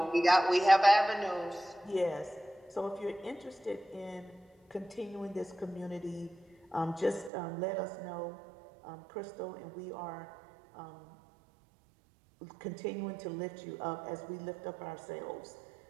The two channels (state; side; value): drops out; left; at 7.3 s